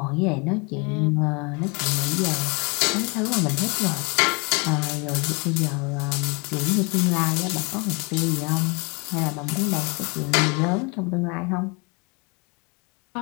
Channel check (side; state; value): right; quieter; 30.7 dB